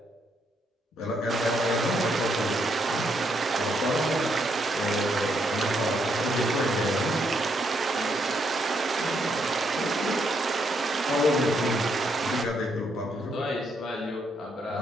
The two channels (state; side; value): normal; both; correlation 0.76